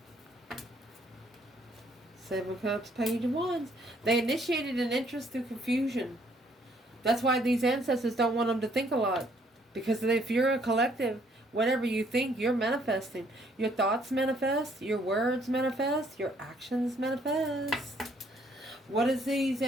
7 Cups, Page of Wands. They initiated an interest through confusion. That's why these ancestors don't want them to think a lot. Because if you're a collective, whatever you think, you're manifesting. Your thoughts manifest. Your words manifest. Your actions manifest. What does these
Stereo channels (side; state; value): both; normal; correlation 0.65